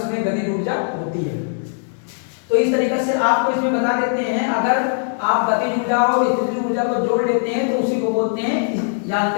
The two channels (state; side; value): silent; right; 66 dB below the other